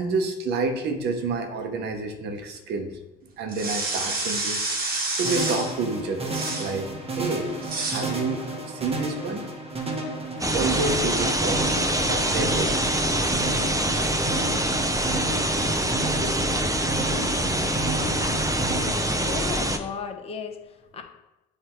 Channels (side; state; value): both; normal; correlation 0.25